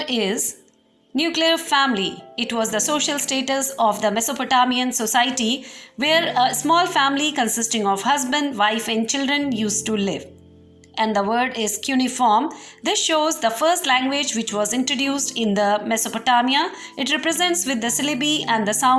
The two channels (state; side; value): identical; both; correlation 1.00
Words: is nuclear family. It was the social status of the Mesopotamian society where a small family consisting of husband, wife and children used to live. And the word is cuneiform. This shows the first language which was introduced in the Mesopotamia. It represents with the syllabi and the